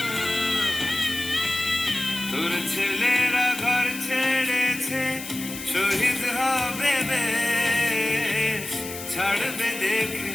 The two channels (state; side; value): noise; left; hiss, 10 dB below the sound